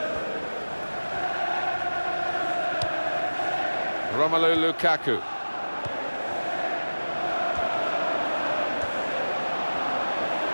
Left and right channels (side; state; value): both; inverted; correlation -1.00